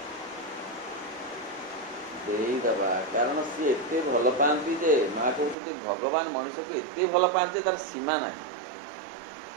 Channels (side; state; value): left; drops out; at 5.6 s